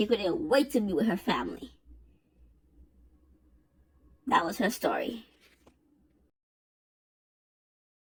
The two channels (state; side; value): identical; both; correlation 1.00